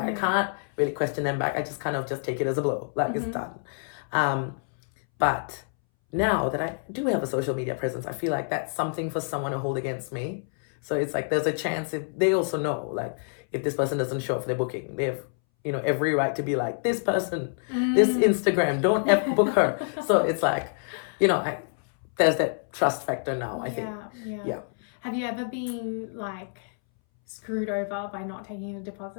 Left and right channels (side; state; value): right; silent; 60 dB below the other